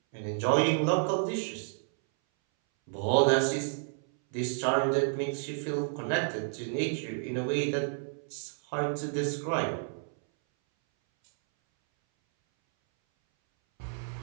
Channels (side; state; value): left; silent; 58 dB below the other